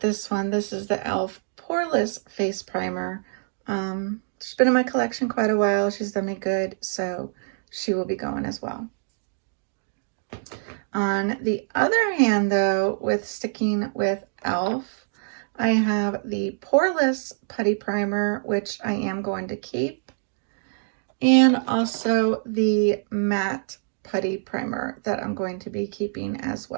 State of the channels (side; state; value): left; silent; digital silence